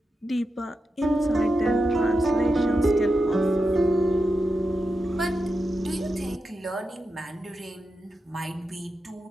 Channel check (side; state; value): both; normal; correlation 0.89